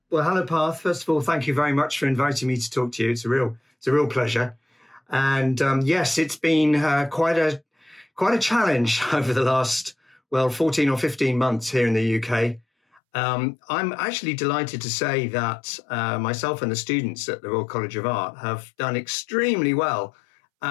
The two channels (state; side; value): drops out; right; at 13.0 s